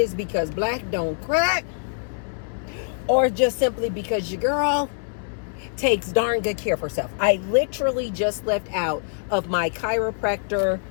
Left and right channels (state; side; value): silent; right; 62 dB below the other